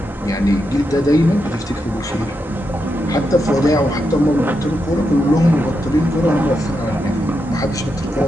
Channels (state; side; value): normal; both; correlation 0.85